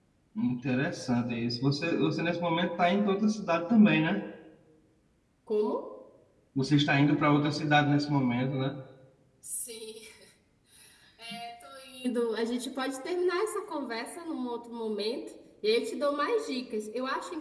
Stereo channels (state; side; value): identical; both; correlation 1.00